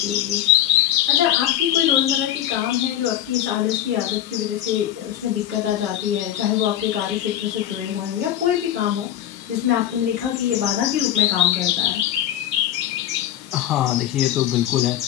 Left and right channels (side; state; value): right; quieter; 11.8 dB